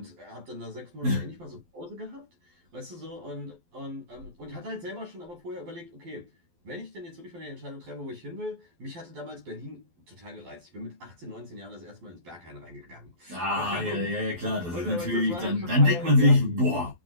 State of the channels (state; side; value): late; left; 12 ms